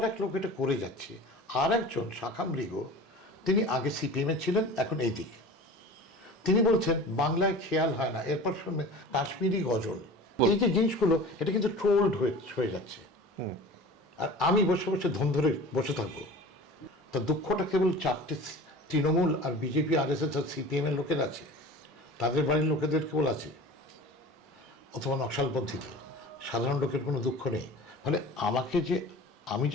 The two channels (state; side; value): normal; both; correlation 0.38